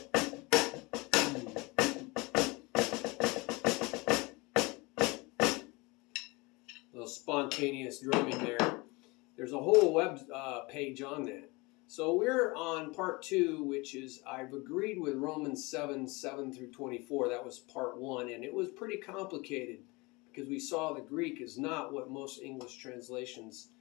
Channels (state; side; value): quieter; right; 25.3 dB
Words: Little spontaneous drumming there. There's a whole web page on that. So we're on part 2, which is I've agreed with Romans 7 through 24. That was part 1, and it was pretty complicated because we saw the Greek is not what most English translations